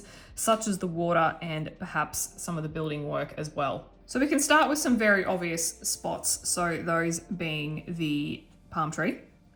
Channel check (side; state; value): both; identical; correlation 1.00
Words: such as the water and perhaps some of the building work as well. So we can start with some very obvious spots. So those being the palm tree.